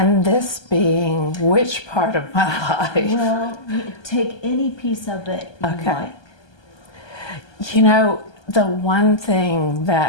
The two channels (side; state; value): right; late; 1.2 ms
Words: this being which part of my life? Well, take any piece of it you like. You know, the one thing